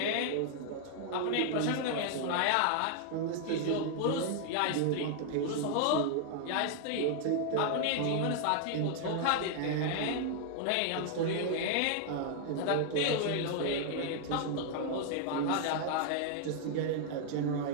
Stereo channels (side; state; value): both; different; correlation 0.00